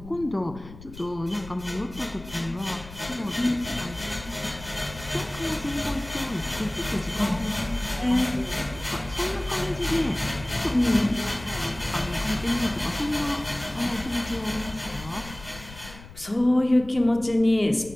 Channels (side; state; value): left; noise; rumble, 16 dB below the sound